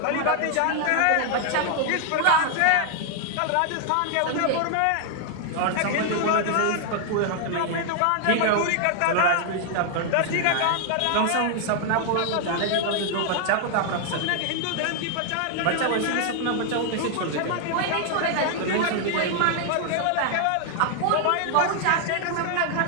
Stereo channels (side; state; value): both; different; correlation 0.00